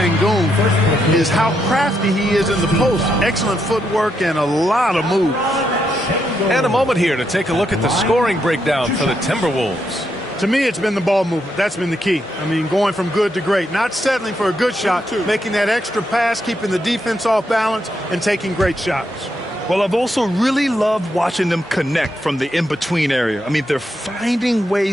is how crafty he is in the post. Excellent footwork and a lot of moves. And a moment here to take a look at the scoring breakdown for the Timberwolves. To me, it's been the ball movement. That's been the key. I mean, going from good to great. Not settling for a good shot, making that extra pass, keeping the defense off balance, and taking great shots. Well, I've also really loved watching them connect from the in-between area. I mean, they're finding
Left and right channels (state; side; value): normal; both; correlation 0.80